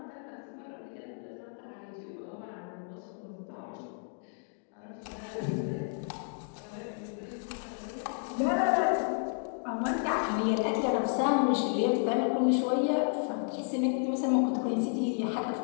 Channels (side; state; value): right; silent; 56 dB below the other